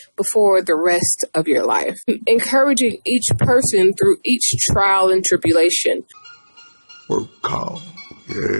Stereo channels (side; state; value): both; inverted; correlation -1.00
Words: but for the rest of your life. Encouraging each person through each trial and tribulation. Work call.